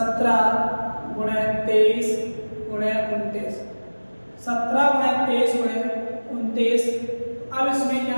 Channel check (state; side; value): inverted; both; correlation -1.00